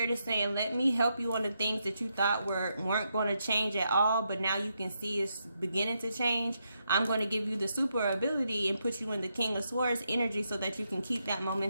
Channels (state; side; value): inverted; both; correlation -0.81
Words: is saying, let me help you on the things that you thought weren't going to change at all, but now you can see it's beginning to change. I'm going to give you the super ability and put you in the King of Swords energy so that you can keep that